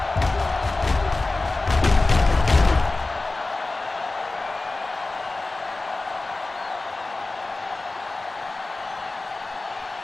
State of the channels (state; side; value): quieter; right; 3.2 dB